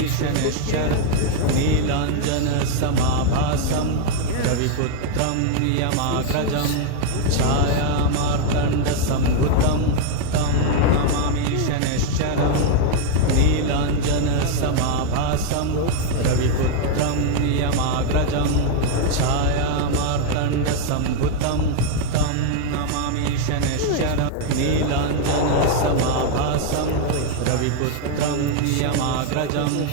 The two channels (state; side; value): different; both; correlation 0.00